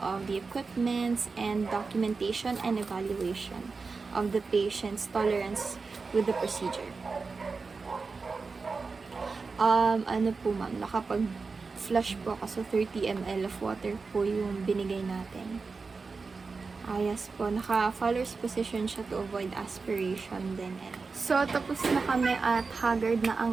the equipments, and documentation and evaluation of the patient's tolerance with the procedure. Ano po ma'am, nakapag-flush po ako, so 30 ml of water po yung binigay natin. Yes po, naka-Fowler's position siya to avoid aspiration din. So, tapos na kami at haggard na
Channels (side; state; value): left; quieter; 4.4 dB